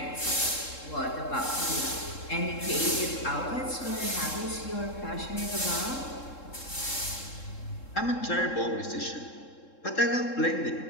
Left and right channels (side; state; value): right; late; 3.7 ms